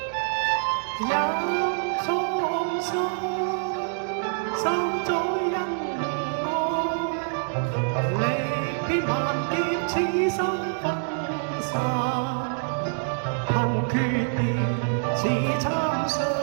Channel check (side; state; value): left; silent; digital silence